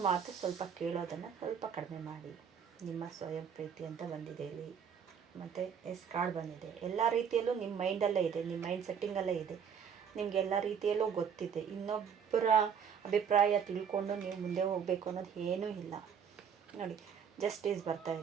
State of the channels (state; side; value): quieter; left; 7.4 dB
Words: ಮಾತು ಸ್ವಲ್ಪ ಕೇಳೋದನ್ನು ಸ್ವಲ್ಪ ಕಡಿಮೆ ಮಾಡಿ. ನಿಮ್ಮ ಸ್ವಯಂ ಪ್ರೀತಿ ಅಂತ ಬಂದಿದೆ ಇಲ್ಲಿ. ಮತ್ತು ಎಸ್ ಕಾರ್ಡ್ ಬಂದಿದೆ. ಎಲ್ಲ ರೀತಿಯಲ್ಲೂ ನಿಮ್ಮ ಮೈಂಡಲ್ಲೇ ಇದೆ, ನಿಮ್ಮ ಮೈಂಡ್ ಸೆಟ್ಟಿಂಗಲ್ಲೇ ಇದೆ. ನಿಮಗೆ ಎಲ್ಲ ರೀತಿಯಲ್ಲೂ ಗೊತ್ತಿದೆ. ಇನ್ನೊಬ್ಬರ ಅಭಿಪ್ರಾಯ ತಿಳ್ಕೊಂಡು ನೀವು ಮುಂದೆ ಹೋಗಬೇಕು ಅನ್ನೋದು ಏನೂ ಇಲ್ಲ. ನೋಡಿ, ಜಸ್ಟಿಸ್ ಬರ್ತಾ